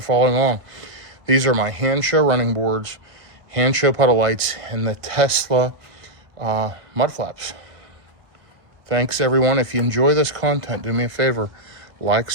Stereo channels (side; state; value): left; late; 1.5 ms